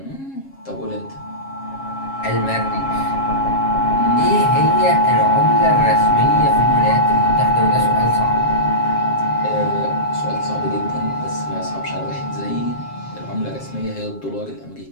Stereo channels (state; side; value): late; right; 7.4 ms